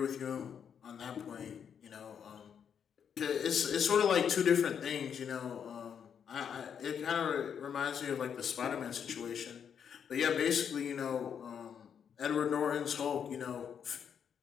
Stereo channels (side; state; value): right; quieter; 7.8 dB